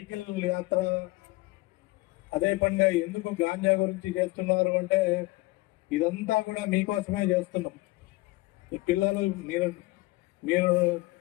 యాత్ర అదే పనిగా ఎందుకు గాంజా గురించి చేస్తున్నారు అంటే, ఇదంతా కూడా మీకోసమే చేస్తున్నాం. ఈ పిల్లలు మీరు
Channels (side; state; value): right; quieter; 21.1 dB